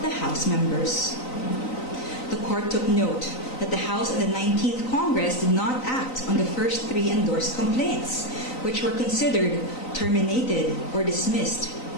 the House members. The court took note that the House of the 19th Congress did not act on the first 3 endorsed complaints, which were considered terminated or dismissed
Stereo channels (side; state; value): right; late; 3.9 ms